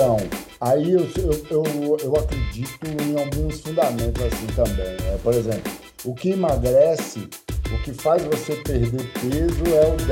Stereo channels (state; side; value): identical; both; correlation 1.00